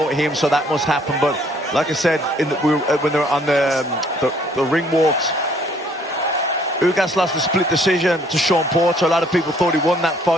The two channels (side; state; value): both; normal; correlation 0.62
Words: him, so that must happen. But like I said, when they were on the ring walks, Ugas lost a split decision to Sean Porter. A lot of people thought he won that